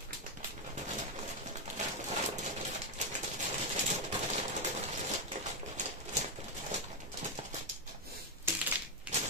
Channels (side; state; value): both; normal; correlation 0.04